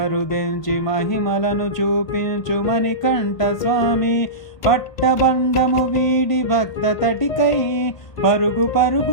మహిమలను చూపించు మణికంఠ స్వామి. పట్టబండము వీడి భక్త తటికై పరుగు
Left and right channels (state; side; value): late; right; 1.5 ms